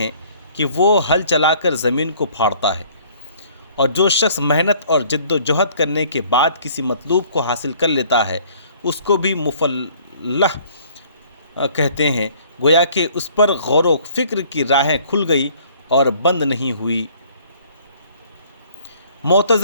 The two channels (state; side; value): inverted; both; correlation -0.57